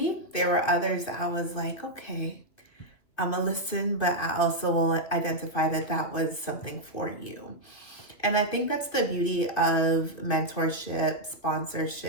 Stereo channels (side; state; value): right; late; 2.8 ms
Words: There were others that I was like, okay, I'm gonna listen, but I also will identify that that was something for you. And I think that's the beauty of mentorship,